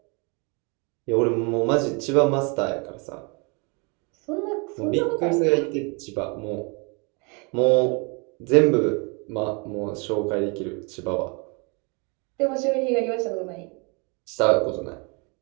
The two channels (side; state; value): left; quieter; 32.3 dB